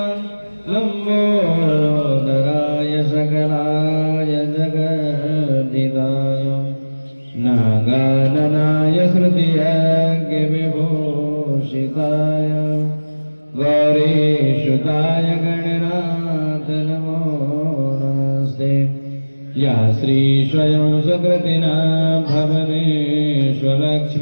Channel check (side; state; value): both; inverted; correlation -1.00